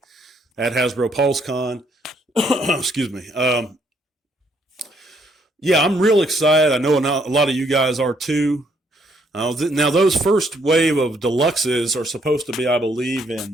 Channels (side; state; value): both; normal; correlation 0.70